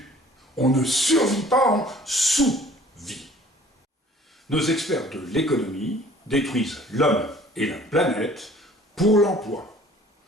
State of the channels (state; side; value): normal; both; correlation 0.52